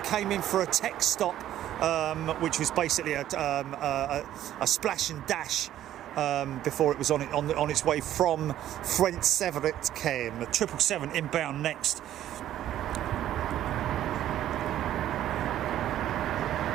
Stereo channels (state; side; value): quieter; left; 12.3 dB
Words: came in for a tech stop, which was basically a splash and dash before it was on its way from French Severet came. 777 inbound next.